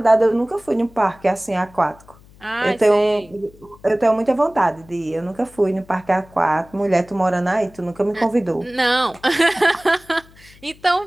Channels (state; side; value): noise; left; hum, 25 dB below the sound